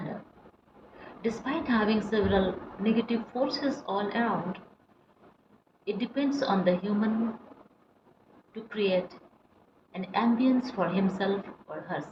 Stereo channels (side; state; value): both; identical; correlation 1.00